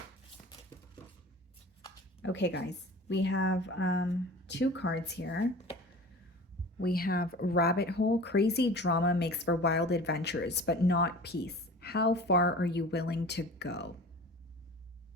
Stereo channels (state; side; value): normal; both; correlation 0.40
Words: Okay, guys, we have two cards here. We have Rabbit Hole. Crazy drama makes for wild adventures, but not peace. How far are you willing to go?